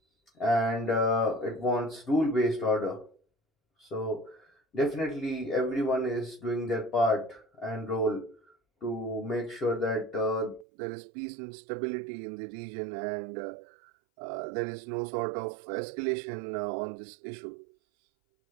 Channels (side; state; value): left; drops out; at 10.7 s